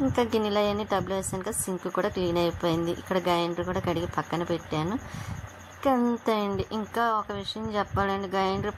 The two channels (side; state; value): both; identical; correlation 1.00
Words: ఇంకా గిన్నెలు అవన్నీ టబ్లో వేసాను కదా, సింక్ కూడా క్లీన్ అయిపోయింది. ఇక్కడ గ్రైండర్ కూడా కడిగి పక్కన పెట్టాను. అంతే అండి. ఇంకా ఒక విషయం చెప్పాలండి, గ్రైండర్